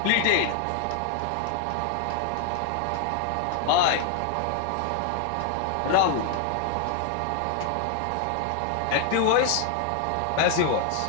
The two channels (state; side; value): different; both; correlation 0.00